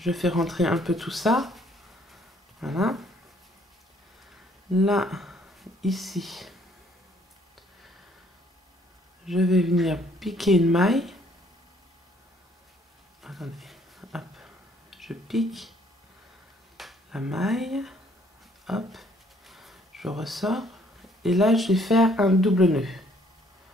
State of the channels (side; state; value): both; normal; correlation 0.63